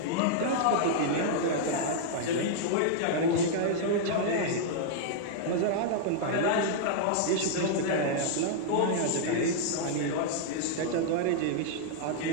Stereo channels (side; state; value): both; different; correlation -0.01